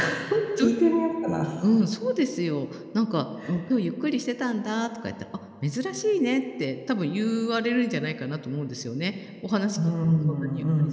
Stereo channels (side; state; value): both; identical; correlation 1.00